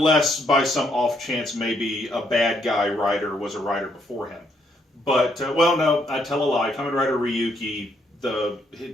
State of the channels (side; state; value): both; normal; correlation 0.73